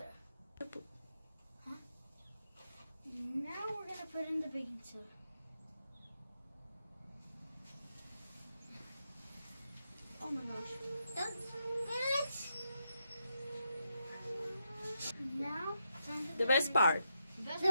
Huh? Now we're gonna put in the baking soda. Oh my gosh. That's now The best part. the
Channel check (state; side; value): inverted; both; correlation -0.83